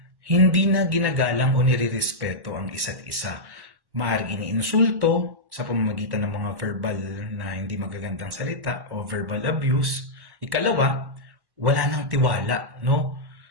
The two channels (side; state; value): left; late; 1.1 ms